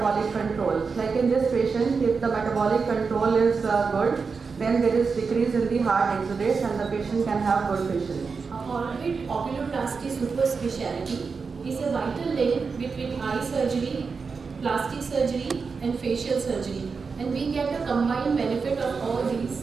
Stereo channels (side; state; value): left; quieter; 5.0 dB